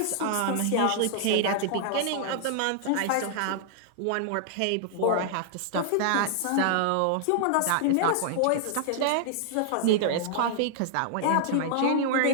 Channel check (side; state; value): both; different; correlation -0.01